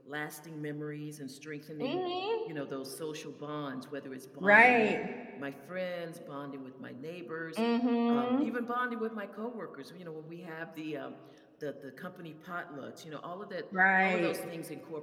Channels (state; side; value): identical; both; correlation 1.00